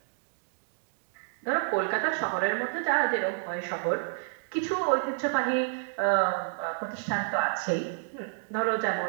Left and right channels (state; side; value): silent; left; digital silence